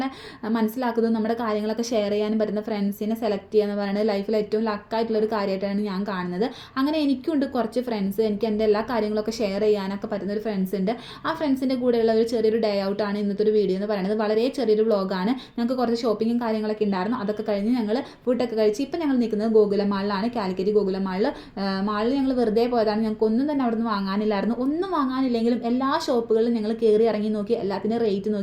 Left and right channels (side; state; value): both; identical; correlation 1.00